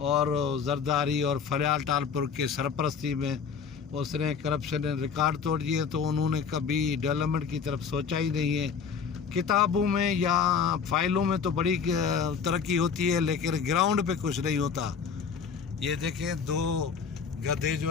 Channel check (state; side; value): quieter; right; 6.3 dB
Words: और जरदारी और फरियाल टालपुर के सरपरस्ती में उसने करप्शन ने रिकॉर्ड तोड़ दिए, तो उन्होंने कभी डेवलपमेंट की तरफ सोचा ही नहीं है। किताबों में या फाइलों में तो बड़ी तरक्की होती है लेकिन ग्राउंड पे कुछ नहीं होता। ये देखें दो गधे जो